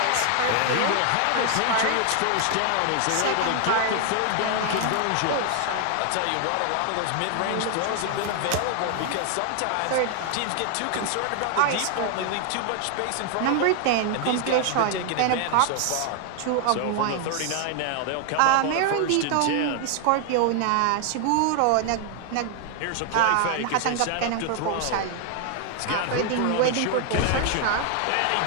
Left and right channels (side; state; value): both; different; correlation 0.00